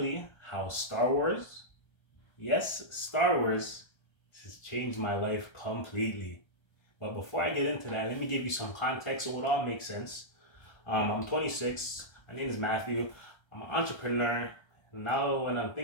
how Star Wars, yes, Star Wars, has changed my life completely. But before I get into that, let me give you some context so it all makes sense. I'm 26. My name is Matthew. I'm an entrepreneur. Now, when I'm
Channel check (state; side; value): late; right; 1.3 ms